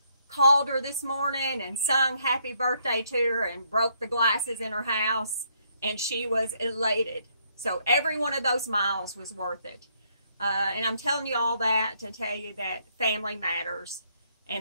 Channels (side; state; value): both; inverted; correlation -0.71